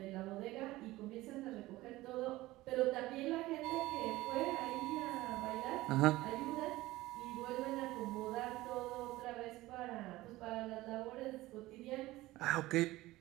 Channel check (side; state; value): left; quieter; 18.0 dB